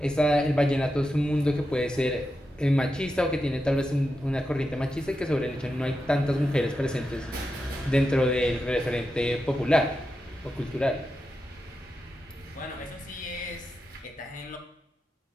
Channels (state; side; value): normal; both; correlation 0.89